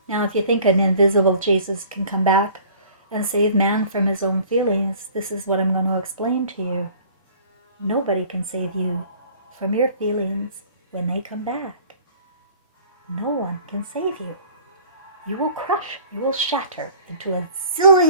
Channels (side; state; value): both; inverted; correlation -0.49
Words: Now, if you think an invisible Jesus can come back and save man from his own feelings, this is what I'm going to explain to you. Nobody can save you from your feelings when they come back. No one can save you. You will crush, you will shatter into a